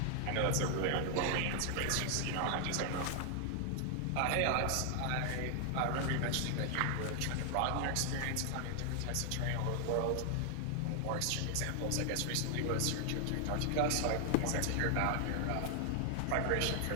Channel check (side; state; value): both; different; correlation 0.00